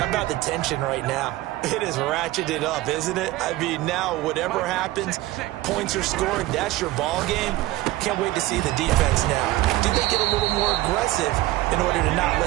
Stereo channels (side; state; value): left; quieter; 17.4 dB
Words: about the tension right now? It is ratcheted up, isn't it? I mean, now whatever happens, points are scored, that's your ball game. Can't wait to see the defense now. Do they get a little more aggressive in order to not